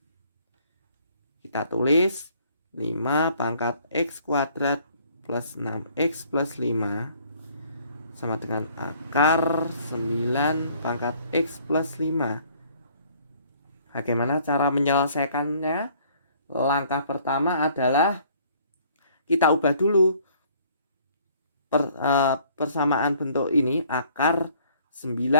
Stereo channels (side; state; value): both; inverted; correlation -0.59